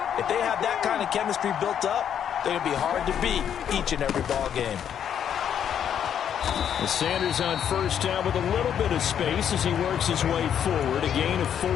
if they have that kind of chemistry built up, they're going to be hard to beat each and every ball game. Sanders on 1st down with a little bit of space as he works his way forward. A gain of 4.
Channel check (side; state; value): right; quieter; 9.0 dB